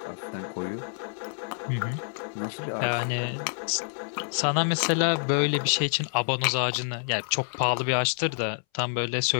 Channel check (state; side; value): silent; right; 60 dB below the other